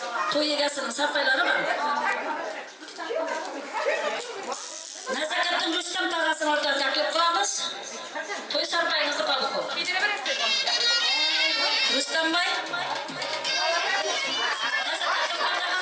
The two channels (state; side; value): identical; both; correlation 1.00